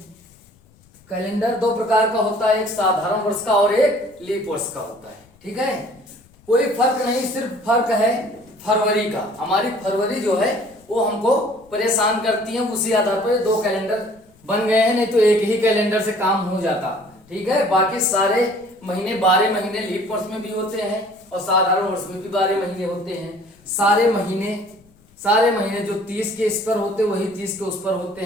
कैलेंडर दो प्रकार का होता है, एक साधारण वर्ष का और एक लीप वर्ष का होता है। ठीक है, कोई फर्क नहीं, सिर्फ फर्क है फरवरी का। हमारी फरवरी जो है वो हमको परेशान करती है, उसी आधार पर दो कैलेंडर बन गए हैं, नहीं तो एक ही कैलेंडर से काम हो जाता। ठीक है, बाकी सारे महीने 12 महीने लीप वर्ष में भी होते हैं और साधारण वर्ष में भी 12 महीने होते हैं। सारे महीने जो 30 के इस पर होते हैं वही 30 के उस पर होते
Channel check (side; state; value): left; noise; rumble, 30 dB below the sound